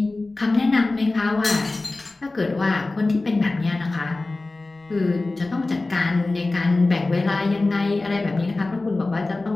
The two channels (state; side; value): quieter; right; 3.2 dB